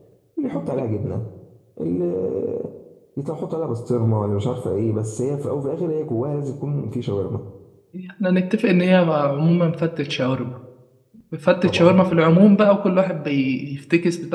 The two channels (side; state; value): both; identical; correlation 1.00